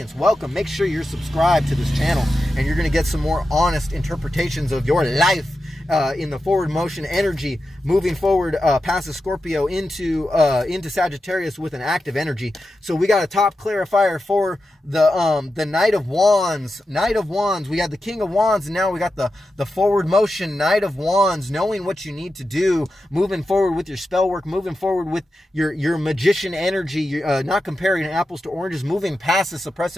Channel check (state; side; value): normal; both; correlation 0.90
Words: Welcome. Make sure you're subscribed to this channel, and you're going to get some more honest interpretations of your life in the forward motion energy, moving forward past the Scorpio into Sagittarius with an active energy. So we got a top clarifier for the Knight of Wands. Knight of Wands. We had the King of Wands, and now we got the forward motion Knight of Wands, knowing what you need to do, moving forward with your spell work, moving forward with your magician energy, not comparing apples to oranges, moving past the